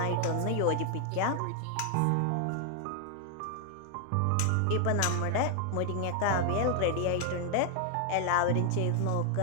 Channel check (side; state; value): both; different; correlation 0.00